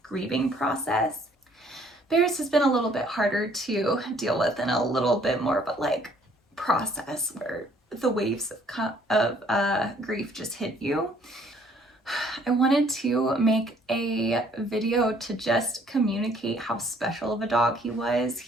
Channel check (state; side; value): normal; both; correlation 0.61